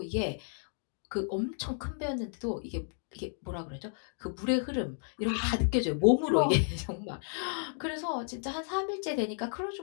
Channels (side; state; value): right; silent; 56 dB below the other